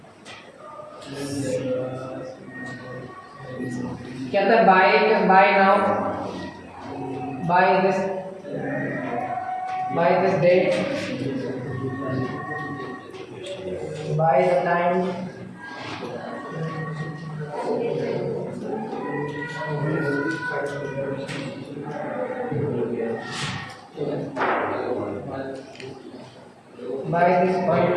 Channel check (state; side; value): identical; both; correlation 1.00